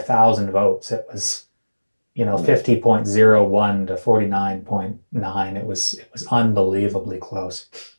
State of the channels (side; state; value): both; inverted; correlation -1.00